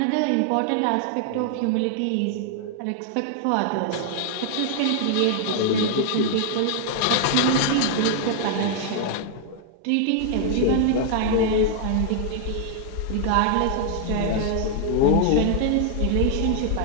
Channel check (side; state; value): both; different; correlation 0.00